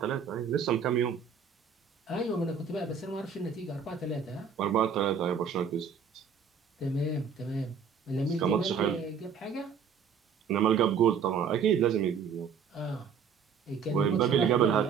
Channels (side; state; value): left; quieter; 6.5 dB